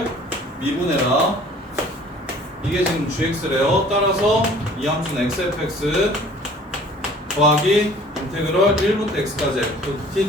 미분해라. 이게 지금 gx래요. 따라서 이 함수는 xfx 더하기 인테그럴 1부터 x까지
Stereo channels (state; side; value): normal; both; correlation 0.51